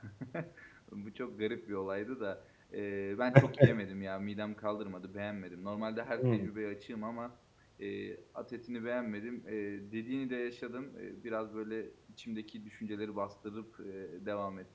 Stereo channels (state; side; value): identical; both; correlation 1.00